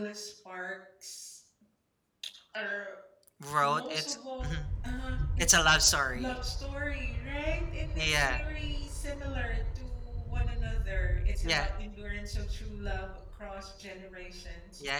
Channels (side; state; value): both; identical; correlation 1.00